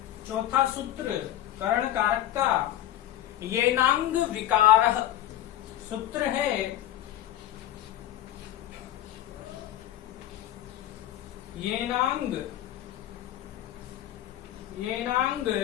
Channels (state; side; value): quieter; right; 12.9 dB